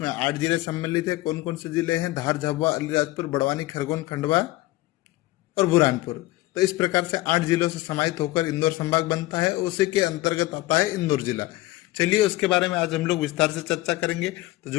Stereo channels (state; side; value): quieter; right; 18.2 dB